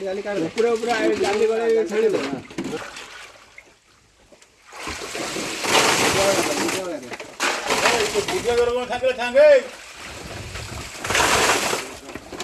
जाली काट दे पूरा पूरा जाली गले छाड़ी दे पूजा करो ठाके ठाके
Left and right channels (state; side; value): identical; both; correlation 1.00